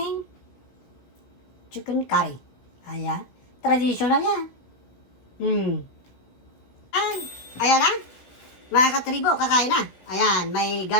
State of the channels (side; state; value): right; late; 16 ms